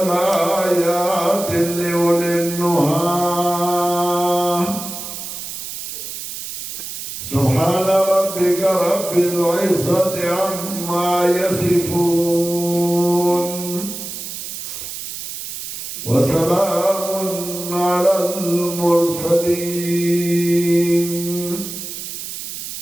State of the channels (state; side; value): noise; right; hiss, 8 dB below the sound